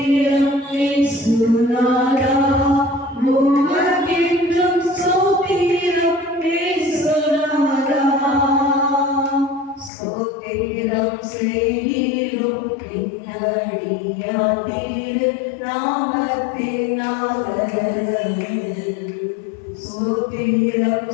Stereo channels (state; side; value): drops out; right; at 9.9 s